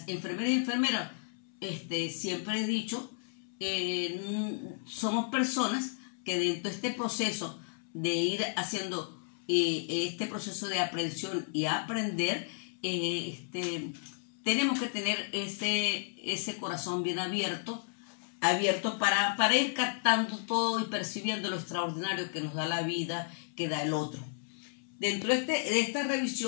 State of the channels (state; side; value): silent; right; 56 dB below the other